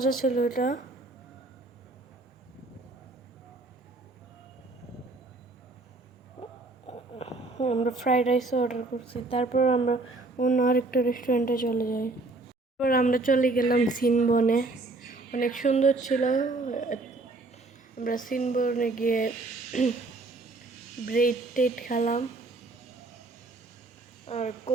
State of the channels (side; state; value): left; quieter; 3.2 dB